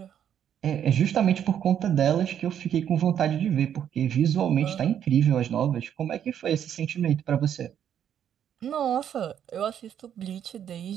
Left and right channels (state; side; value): quieter; left; 9.4 dB